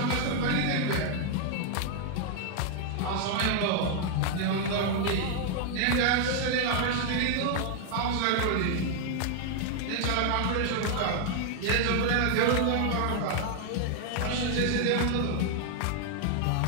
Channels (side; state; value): both; different; correlation 0.00